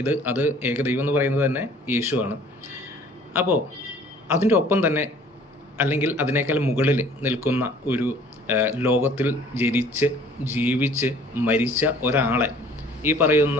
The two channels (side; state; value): both; normal; correlation 0.52